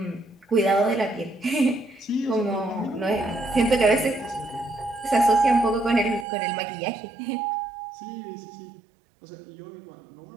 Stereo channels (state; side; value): drops out; left; at 6.2 s